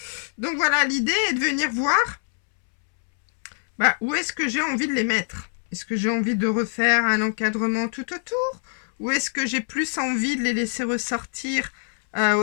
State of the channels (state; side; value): silent; right; 63 dB below the other